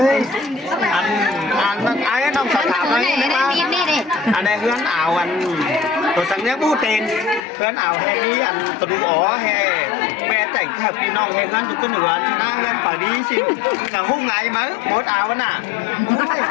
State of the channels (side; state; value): right; drops out; at 7.4 s